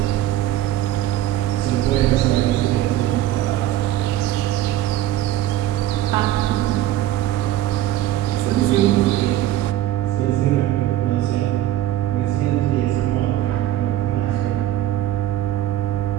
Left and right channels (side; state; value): left; quieter; 13.5 dB